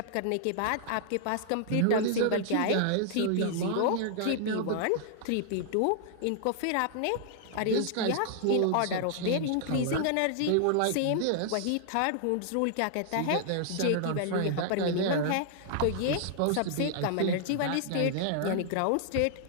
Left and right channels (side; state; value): both; different; correlation -0.01